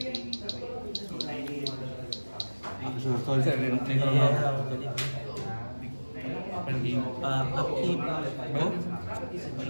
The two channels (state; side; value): inverted; both; correlation -1.00